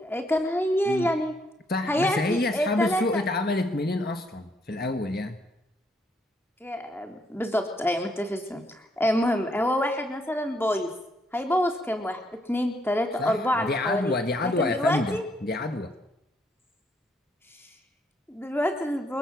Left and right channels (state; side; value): normal; both; correlation 0.72